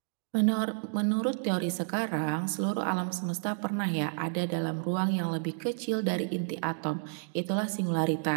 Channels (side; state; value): left; silent; digital silence